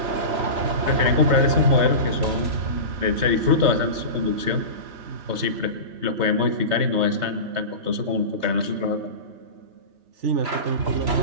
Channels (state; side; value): late; left; 3.3 ms